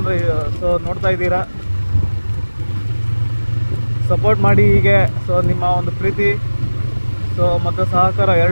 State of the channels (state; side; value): inverted; both; correlation -1.00